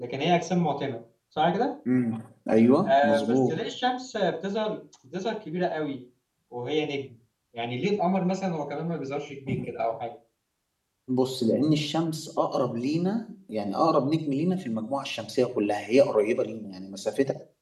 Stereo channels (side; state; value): both; identical; correlation 1.00